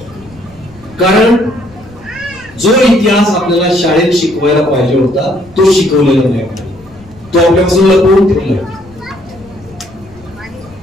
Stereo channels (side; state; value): left; noise; rumble, 23 dB below the sound